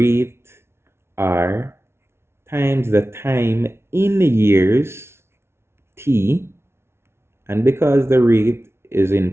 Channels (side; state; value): left; late; 0.12 ms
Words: R times the time in years T. And because the rate is in